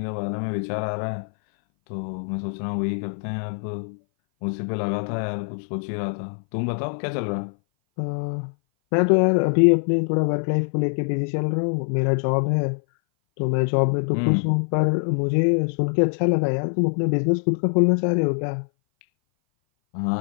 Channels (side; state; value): right; silent; 59 dB below the other